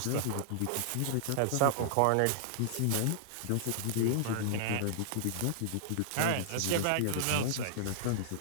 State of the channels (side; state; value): both; different; correlation -0.01